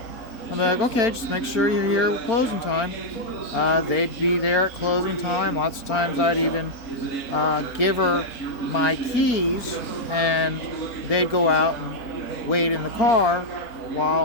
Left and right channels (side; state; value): right; late; 4.4 ms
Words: I'm like, okay, just make sure you're here at closing time. They'd be there at closing time. Lots of times I'd even give her my keys, and they'd go out and wait in the car